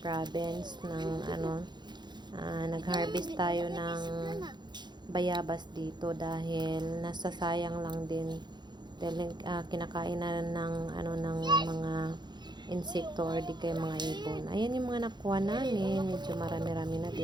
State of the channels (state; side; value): late; left; 0.21 ms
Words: ng nag-harvest tayo ng bayabas dito dahil nasasayang lang din dahil kinakain na ng mga insekto or di kaya mga ibon. Ayan yung mga nakuha namin, medyo marami-rami na